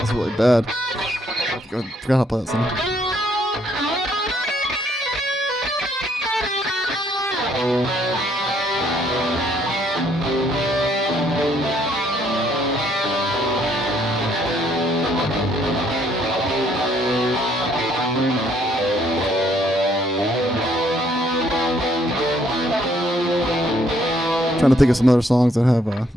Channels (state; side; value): normal; both; correlation 0.67